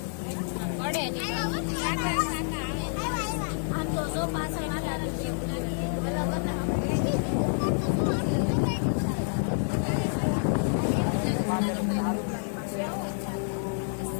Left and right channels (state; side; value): silent; right; digital silence